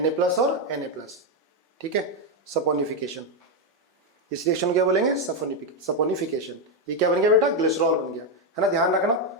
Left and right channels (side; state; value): both; normal; correlation 0.04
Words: और Na+, ठीक है, सपोनिफिकेशन, इस रिएक्शन को क्या बोलेंगे, सपोनिफिकेशन। ये क्या बन गया बेटा, ग्लिसरॉल बन गया, है ना। ध्यान